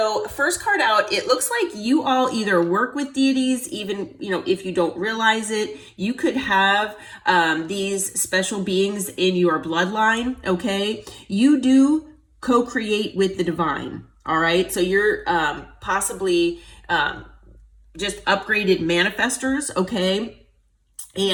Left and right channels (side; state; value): both; identical; correlation 1.00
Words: first card out, it looks like you all either work with deities, even, if you don't realize it, you could have these special beings in your bloodline, okay? You do co-create with the divine, all right? So you're possibly just upgraded manifestors, okay?